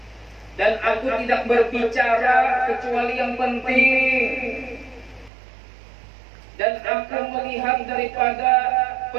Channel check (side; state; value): left; drops out; at 5.3 s